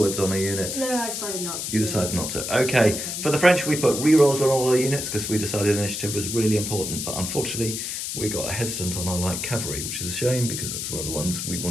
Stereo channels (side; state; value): left; noise; hiss, 4 dB below the sound